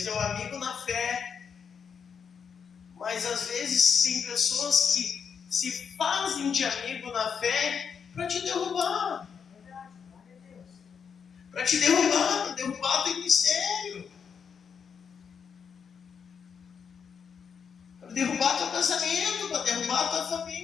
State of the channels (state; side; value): quieter; right; 6.7 dB